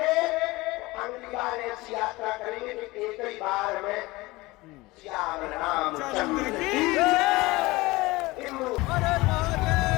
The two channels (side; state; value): right; quieter; 21.1 dB